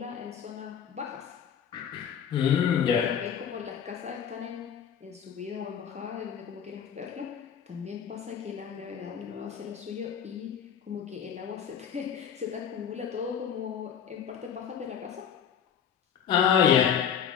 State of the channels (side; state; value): right; quieter; 8.1 dB